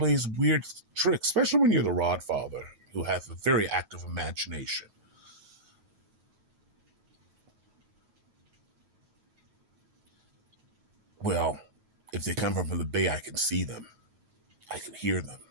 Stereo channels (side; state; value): left; late; 9.3 ms